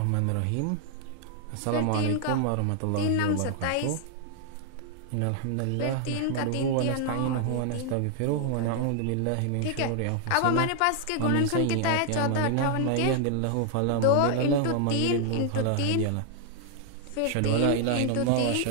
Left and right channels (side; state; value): both; different; correlation 0.00